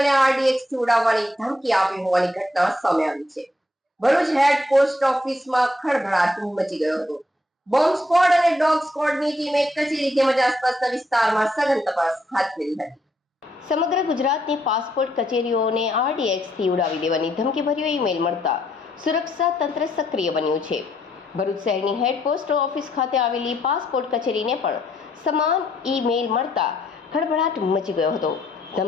આરડીએક્સથી ઉડાવવાની ધમકી આપી હોવાની ઘટના સામે આવી છે. ભરૂચ હેડ પોસ્ટ ઓફિસમાં ખળભળાટ મચી ગયો હતો. બોમ્બ સ્ક્વોડ અને ડોગ સ્ક્વોડની ટીમે કચેરી તેમજ આસપાસના વિસ્તારમાં સઘન તપાસ હાથ ધરી હતી. સમગ્ર ગુજરાતની પાસપોર્ટ કચેરીઓને આરડીએક્સથી ઉડાવી દેવાની ધમકીભર્યો ઈમેલ મળતા સુરક્ષા તંત્ર સક્રિય બન્યું છે. ભરૂચ શહેરની હેડ પોસ્ટ ઓફિસ ખાતે આવેલી પાસપોર્ટ કચેરીને પણ સમાન ઈમેલ મળતા ખળભળાટ મચી ગયો હતો.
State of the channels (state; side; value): normal; both; correlation 0.73